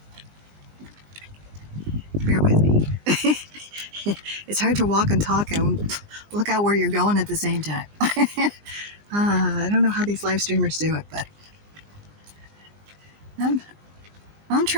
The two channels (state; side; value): late; left; 20 ms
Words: Bear with me. It's hard to walk and talk and look out where you're going at the same time. I don't know how these live streamers do it, but I'm, I'm